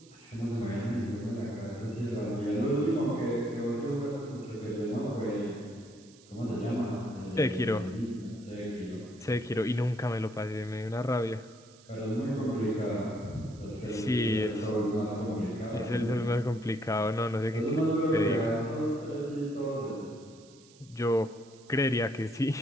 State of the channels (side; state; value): right; noise; hiss, 25 dB below the sound